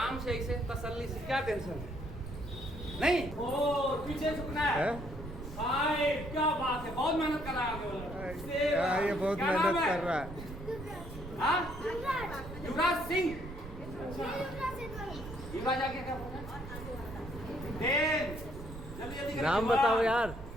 से, ऐसे तसल्ली से, क्या टेंशन है नहीं। ओ पीछे झुकना है। हाय क्या बात है, बहुत मेहनत कर रहा है। ये बहुत मेहनत कर रहा है। युवराज सिंह। युवराज आगे क्या बोलना है? जल्दी जल्दी नाम बताओ यार।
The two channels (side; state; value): right; noise; rumble, 12 dB below the sound